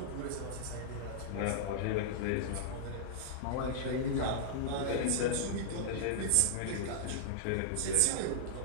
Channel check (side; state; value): both; different; correlation -0.02